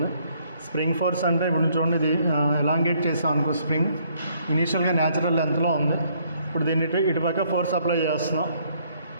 స్ప్రింగ్ ఫోర్స్ అంటే ఇప్పుడు చూడండి, ఇది ఎలాంగేట్ చేసాం అనుకో, స్ప్రింగ్ ఇనీషియల్గా న్యాచురల్ లెంత్లో ఉంది. ఇప్పుడు దీన్ని ఇటు పక్క ఫోర్స్ అప్లై చేస్తున్నాం,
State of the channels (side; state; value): both; inverted; correlation -0.67